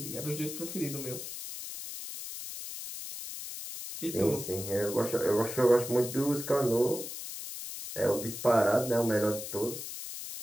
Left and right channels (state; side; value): noise; left; hiss, 8 dB below the sound